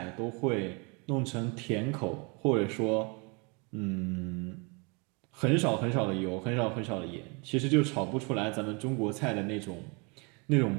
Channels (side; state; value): left; quieter; 31.8 dB